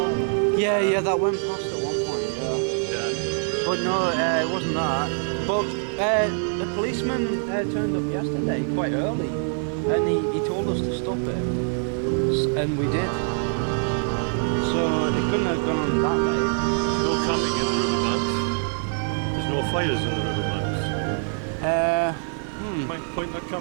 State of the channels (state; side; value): silent; left; 58 dB below the other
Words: Yeah, that went past at one point, Yeah. But no, it wasn't that. But the policeman turned up yesterday, quite early, and he told us to stop it. And we did. So it couldn't have gone on that way. There's no camping in the riverbanks. There's no fires in the riverbanks. Point that